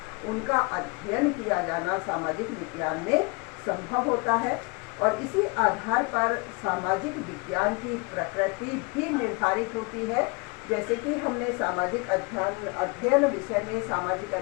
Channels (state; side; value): quieter; right; 30.3 dB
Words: उनका अध्ययन किया जाना सामाजिक विज्ञान में संभव होता है। और इसी आधार पर सामाजिक विज्ञान की प्रकृति भी निर्धारित होती है जैसे कि हमने सामाजिक अध्ययन विषय में सामाजिक